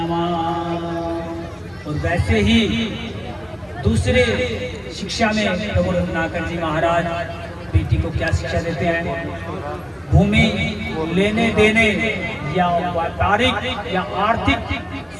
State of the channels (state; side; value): identical; both; correlation 1.00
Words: और वैसे ही दूसरे शिक्षा में प्रभु रत्नाकर जी महाराज बेटी को क्या शिक्षा देते हैं? भूमि लेने देने या व्यापारिक या आर्थिक,